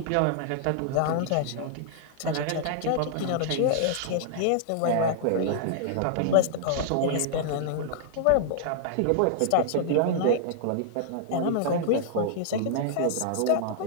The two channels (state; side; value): different; both; correlation -0.01